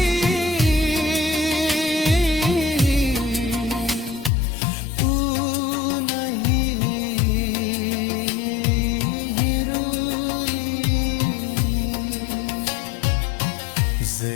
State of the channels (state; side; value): drops out; right; at 4.3 s